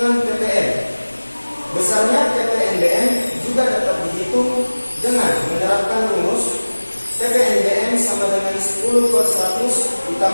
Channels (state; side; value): inverted; both; correlation -1.00